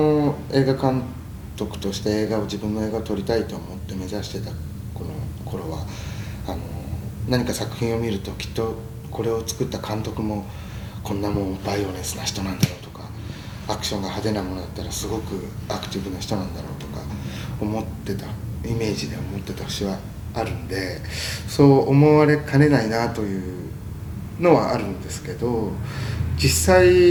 映画監督として自分の映画を撮りたいと思って目指してたこの頃は何か作品を見るときっとこれを作った監督もこんなもんバイオレンスな人なんだろうとか、アクションが派手なものだったらすごくアクティブな人なんだろうとか思ってたイメージで思ってた節はあるんで、そう思われかねないなというのはあるんですけど、実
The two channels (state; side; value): identical; both; correlation 1.00